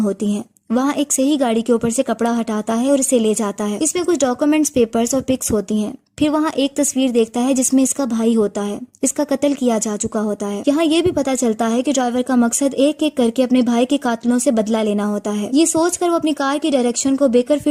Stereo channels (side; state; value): both; identical; correlation 1.00